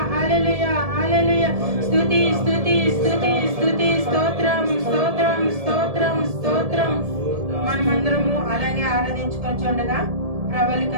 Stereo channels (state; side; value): late; left; 1.7 ms